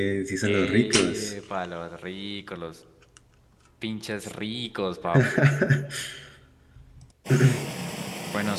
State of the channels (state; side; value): identical; both; correlation 1.00